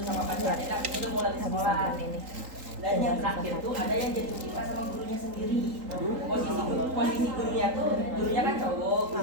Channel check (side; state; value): left; late; 3.8 ms